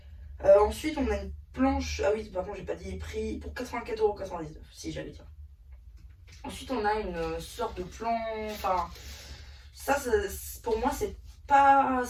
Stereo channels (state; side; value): identical; both; correlation 1.00